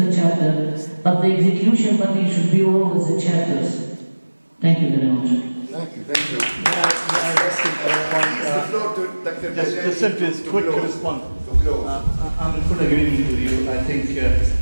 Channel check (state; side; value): inverted; both; correlation -1.00